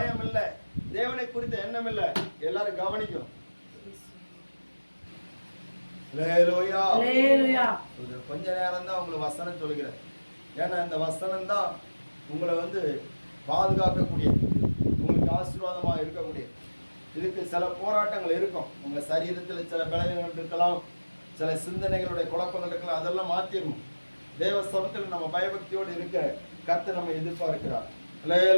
இல்லை, தேவனை குறித்த எண்ணம் இல்லை. எல்லாரும் கவனிக்கும். கொஞ்ச நேரம் தான் உங்களுக்கு வசனம் சொல்லுகிறேன். ஏன்னா இந்த வசனம் தான் உங்களை பாதுகாக்கக்கூடிய, உங்களுக்கு ஆசீர்வாதமா இருக்கக்கூடிய. இதுக்கு சில போராட்டங்கள் இருக்கும். உங்க சரீரத்தில் சில பலவீனங்கள் இருக்கலாம், சில சிந்தனைகளுடைய குழப்பங்கள் இருக்கலாம். அதெல்லாம் மாத்திரணும். தேவ சமத்தில் நம்ம பயபக்தியோடு இருக்க கர்த்தர் நம்ம எதிர்பார்க்கிறார்.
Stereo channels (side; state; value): both; inverted; correlation -1.00